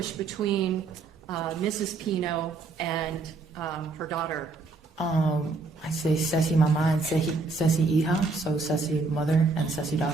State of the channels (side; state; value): left; quieter; 3.9 dB